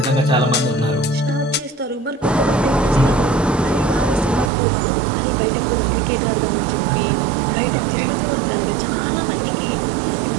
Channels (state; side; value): drops out; left; at 4.5 s